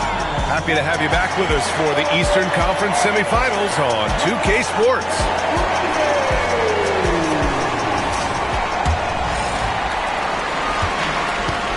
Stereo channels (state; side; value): identical; both; correlation 1.00